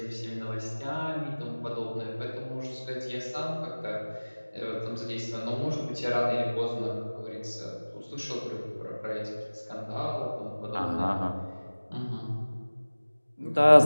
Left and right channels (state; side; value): inverted; both; correlation -1.00